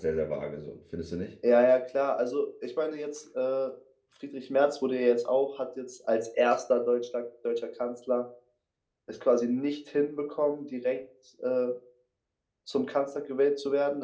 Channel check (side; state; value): both; identical; correlation 1.00